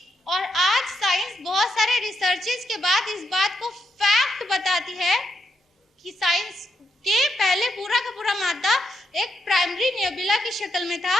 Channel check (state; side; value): normal; both; correlation 0.80